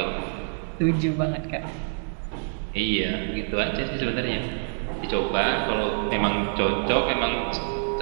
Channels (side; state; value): left; silent; digital silence